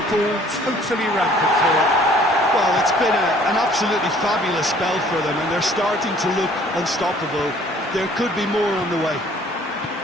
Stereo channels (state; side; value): normal; both; correlation 0.56